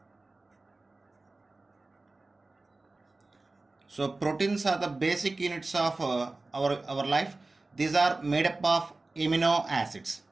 So proteins are the basic units of our life. These are made up of amino acids.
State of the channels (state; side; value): quieter; left; 3.3 dB